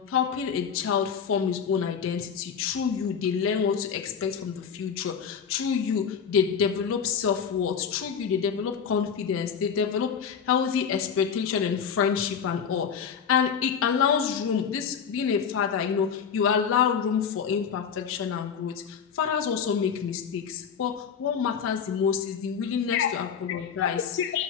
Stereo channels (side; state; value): right; quieter; 7.1 dB